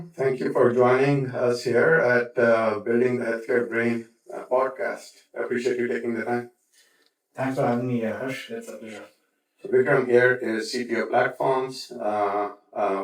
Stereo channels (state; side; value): identical; both; correlation 1.00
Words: Thank you for joining us here at Building the Healthcare Brain podcast. I appreciate you taking the time. Thanks for having me, Harsh. It's a pleasure. So, Vikram here is CTO Platforms